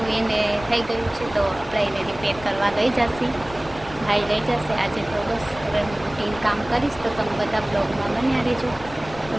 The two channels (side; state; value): left; noise; rumble, 17 dB below the sound